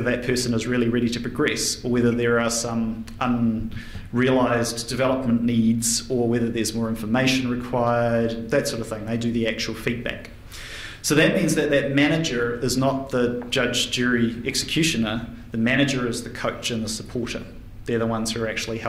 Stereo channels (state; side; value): identical; both; correlation 1.00